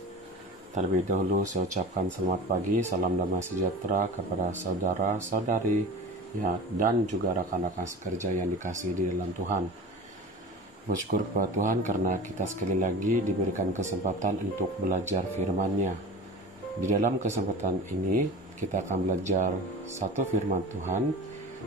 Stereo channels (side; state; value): both; normal; correlation 0.34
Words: Terlebih dahulu saya ucapkan selamat pagi, salam damai sejahtera kepada saudara-saudari ya, dan juga rekan-rekan sekerja yang dikasihi di dalam Tuhan. Bersyukur kepada Tuhan karena kita sekali lagi diberikan kesempatan untuk belajar firman-Nya. Di dalam kesempatan ini kita akan belajar satu firman Tuhan,